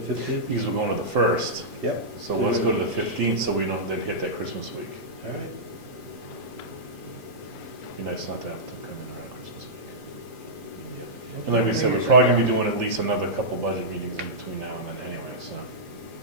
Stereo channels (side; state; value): right; late; 8.9 ms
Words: 15th? Because we're going to the 1st, Yep. so let's go to the 15th so we don't then hit that Christmas week. All right. Be nice not to have to come in around Christmas week. And like we said, we're probably gonna be doing at least another couple budget meetings in between now and then anyway, so